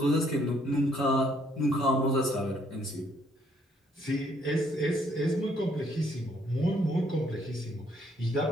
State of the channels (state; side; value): normal; both; correlation 0.68